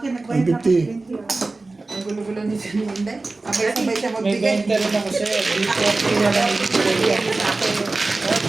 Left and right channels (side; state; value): left; quieter; 3.4 dB